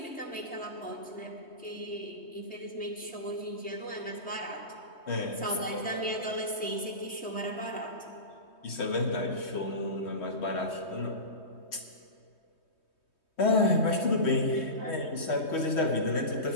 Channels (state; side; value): late; right; 3.2 ms